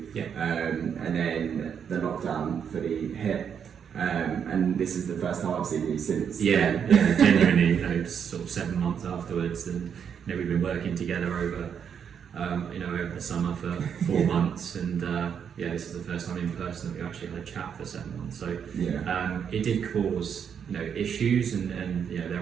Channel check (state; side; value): quieter; left; 7.6 dB